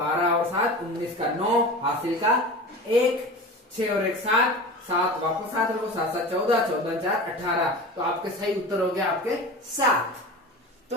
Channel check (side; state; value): both; normal; correlation 0.33